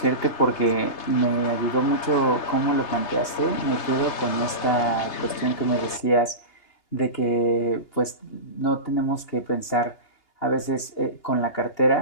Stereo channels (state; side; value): late; right; 2.8 ms